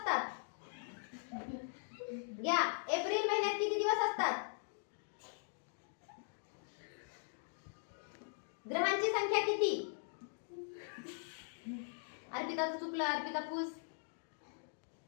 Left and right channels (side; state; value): right; silent; digital silence